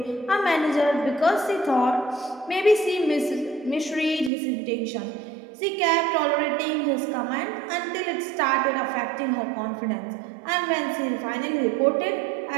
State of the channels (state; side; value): drops out; left; at 4.3 s